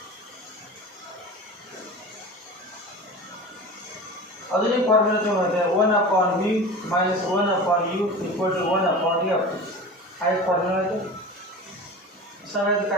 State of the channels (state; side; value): normal; both; correlation 0.33